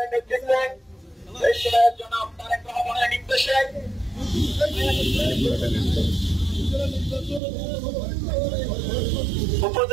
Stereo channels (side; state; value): left; drops out; at 7.4 s